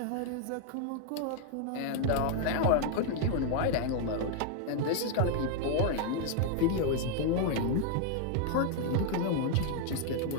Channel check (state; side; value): different; both; correlation 0.00